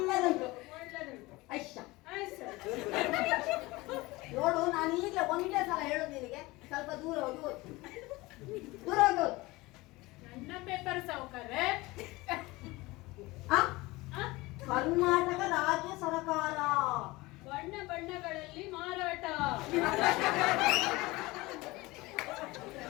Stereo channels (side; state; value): right; quieter; 21.3 dB